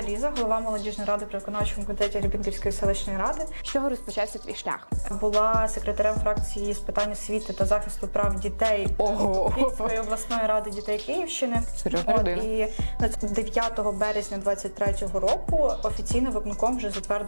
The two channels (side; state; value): both; inverted; correlation -1.00